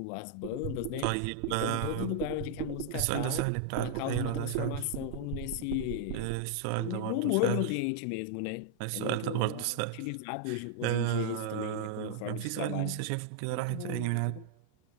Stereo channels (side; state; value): both; different; correlation -0.01